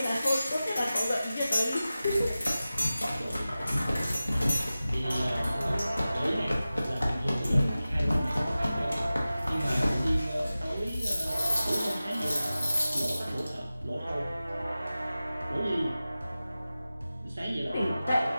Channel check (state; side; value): inverted; both; correlation -0.96